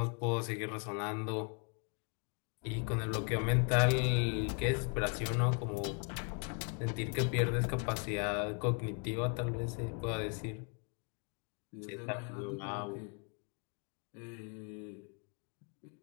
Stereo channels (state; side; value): quieter; right; 37.6 dB